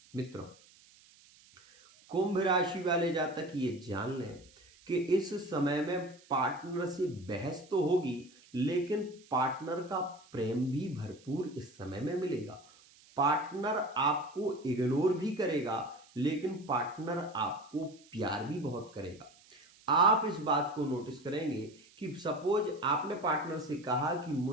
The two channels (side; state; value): right; noise; hiss, 26 dB below the sound